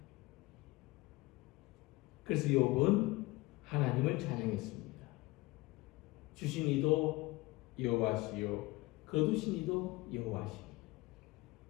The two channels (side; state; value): right; quieter; 21.4 dB